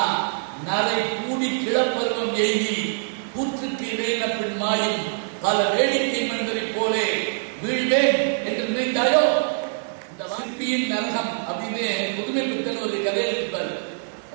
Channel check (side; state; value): left; silent; digital silence